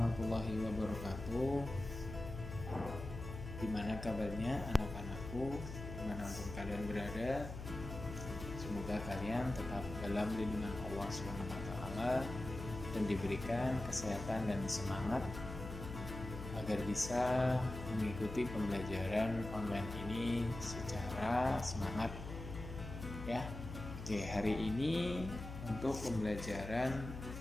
wabarakatuh. Gimana kabarnya anak-anakku, dimanapun kalian berada? Semoga kalian tetap dalam lindungan Allah SWT dan diberikan kesehatan dan semangat agar bisa mengikuti pembelajaran online ini secara semangat ya. Oke, hari ini untuk pembelajaran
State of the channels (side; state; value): left; noise; hum, 9 dB below the sound